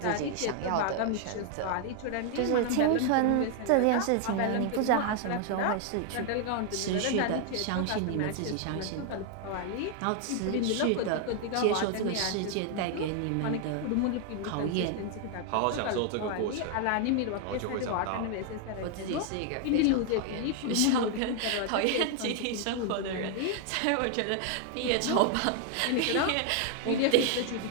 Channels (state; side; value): different; both; correlation 0.00